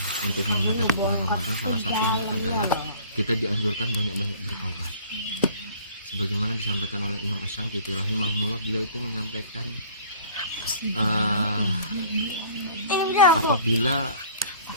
untuk menghadapi bulan Ramadan. Salah satunya adalah kita dianjurkan banyak-banyak bertaubat. Sebagaimana disampaikan oleh Imam Asy-Syankiti rahimahullah, beliau itu menyampaikan apabila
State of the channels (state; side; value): inverted; both; correlation -0.49